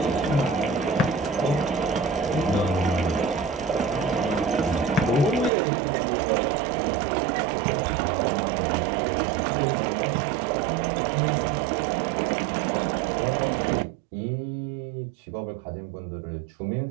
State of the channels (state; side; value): drops out; left; at 5.5 s